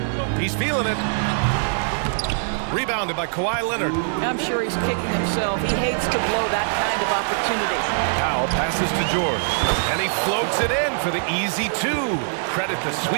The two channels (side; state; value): left; silent; 64 dB below the other